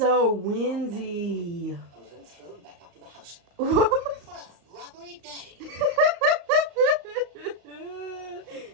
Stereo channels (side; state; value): left; late; 35 ms